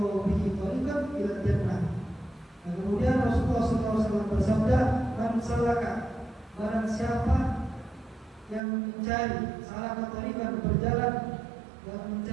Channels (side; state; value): left; drops out; at 8.6 s